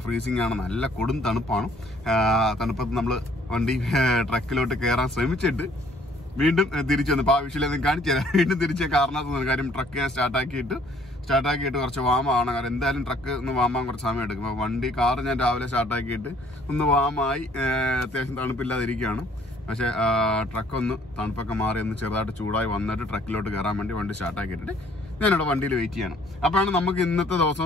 ഫ്രീസിംഗ് ആണ്, നല്ല കൊടും തണുപ്പാണ്. തണുപ്പത്ത് നമ്മൾ വണ്ടി ട്രക്കിലോട്ട് കയറാൻ ശ്രമിച്ചിട്ട് വീണ്ടും തിരിച്ചു വന്നു. അപ്പോൾ ആ വിഷയം കാണിച്ചു തരാം. വീണ്ടും തിരിച്ച കാരണത്ത് കാര്യം ട്രക്ക് ഞാൻ സ്റ്റാർട്ടാക്കിയിട്ട് കുറച്ച് വാമാണ്. കാരണം എന്തായാലും ട്രക്ക് ഒന്ന് വാമാൻ കുറച്ച് സമയം എടുക്കും. അപ്പോൾ കാറ് ഞാൻ രാവിലെ സ്റ്റാർട്ടാക്കിയിട്ട് ഒന്ന് വാമായി അത്യാവശ്യം തണുപ്പില്ലാതിരിക്കുകയാണ്. പക്ഷേ ട്രക്കൊന്ന് തണുപ്പൊക്കെ മാറി ഒന്ന് ചെറുതായിട്ട് ചൂടായി വന്നിട്ട് ട്രക്കിലോട്ട് കയറാൻ വേണ്ടി വണ്ടി സ്റ്റാർട്ടാക്കിയിട്ടിട്ട് ഞാനിവിടെ വണ്ടിയിൽ വെയിറ്റ് ചെയ്യണം. അപ്പോഴാണ് നമുക്ക് ഇന്നത്തെ ദിവസം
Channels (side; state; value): both; normal; correlation 0.60